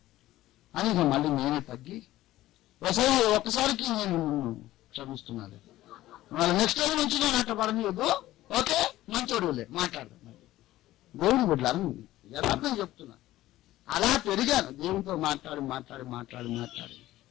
అని ఇక మళ్ళీ నేనే తగ్గి ఒక్కసారికి నేను క్షమిస్తున్నాను. మళ్ళీ నెక్స్ట్ టైం నుంచి నేను అట్లా పడలేదు. ఓకే మంచోడులే మాట్లాడదాం. దేవుని బిడ్డలు యథార్థం చెప్తున్నా. అలా పెరిగాను దేవునితో మాట్లాడి మాట్లాడి మాట్లాడి మాట్లాడి.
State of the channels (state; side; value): quieter; right; 15.6 dB